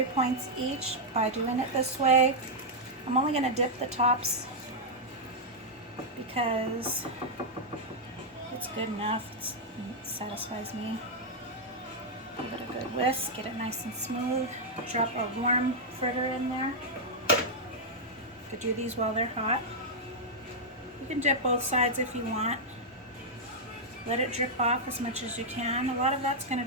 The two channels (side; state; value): both; normal; correlation -0.05